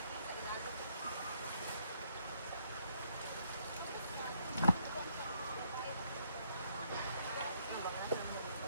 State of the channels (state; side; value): inverted; both; correlation -0.71